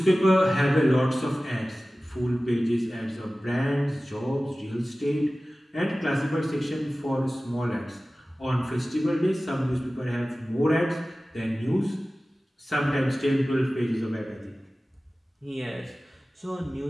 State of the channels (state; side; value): normal; both; correlation 0.97